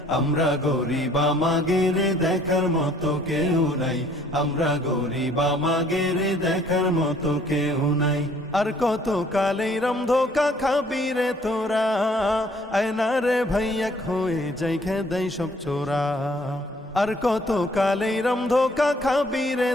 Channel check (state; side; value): normal; both; correlation 0.60